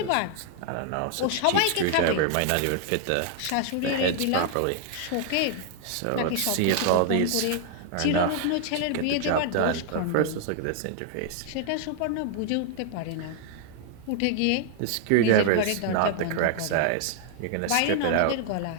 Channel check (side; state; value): both; different; correlation 0.00